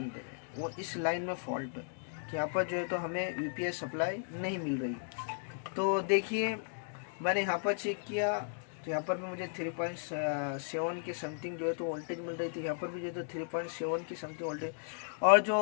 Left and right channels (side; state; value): right; silent; digital silence